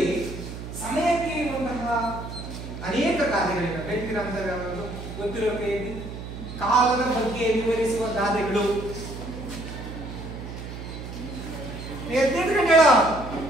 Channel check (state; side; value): noise; right; hum, 10 dB below the sound